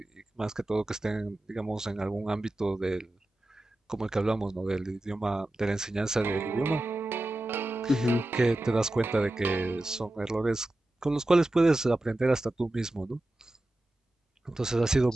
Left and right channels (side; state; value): both; normal; correlation 0.94